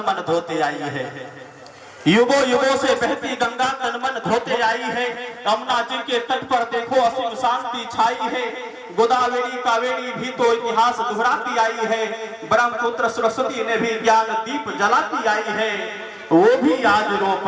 मन धोते आई है, युगों युगों से बहती गंगा तन मन धोते आई है, यमुना जी के तट पर देखो असीम शांति छाई है, गोदावरी कावेरी भी तो इतिहास दोहराती आई है, ब्रह्मपुत्र सरस्वती ने भी ज्ञान दीप जलाती आई है, वो भी आज रो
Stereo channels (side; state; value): both; identical; correlation 1.00